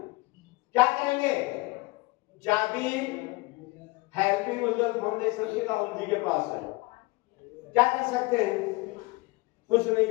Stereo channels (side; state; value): right; quieter; 23.3 dB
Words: क्या करेंगे? चाबी हेल्पिंग उज्जवल फाउंडेशन की राहुल जी के पास है। क्या कर सकते हैं? कुछ नहीं